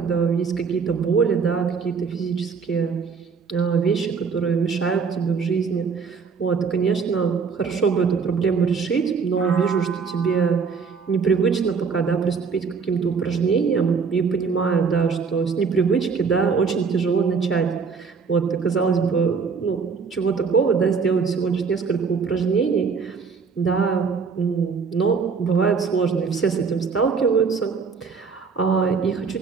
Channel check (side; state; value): left; quieter; 5.5 dB